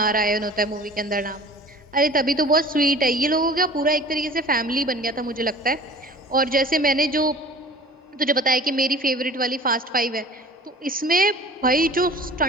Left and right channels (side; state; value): both; normal; correlation 0.43